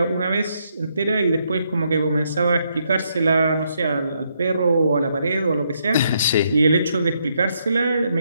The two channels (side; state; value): both; inverted; correlation -0.76